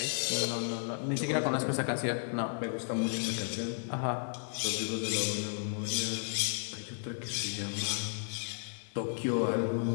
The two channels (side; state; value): right; silent; 55 dB below the other